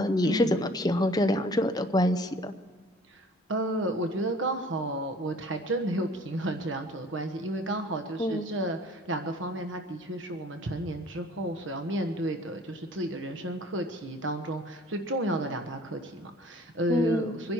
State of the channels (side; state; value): both; normal; correlation 0.51